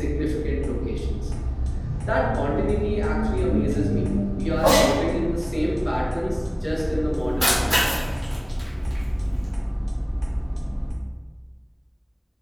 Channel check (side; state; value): both; identical; correlation 1.00